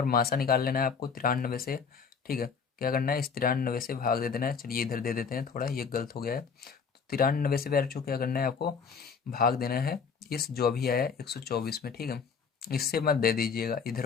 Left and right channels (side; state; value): right; quieter; 5.9 dB